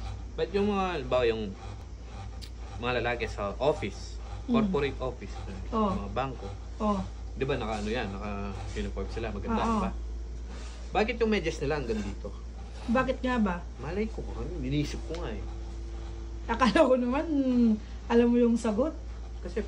Ba't yung mga, halimbawa yung mga lalaki sa office, corporate office, mga bangko, Oh. di ba naka ano yan, naka-uniform sila, maganda, Oo. di ba? Bakit yung medyas nila hanggang dito? Bakit nga ba? Malay ko, inisip ko nga eh. Akala ko naman, alam mo yung sagot. Kasi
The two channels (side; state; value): both; identical; correlation 1.00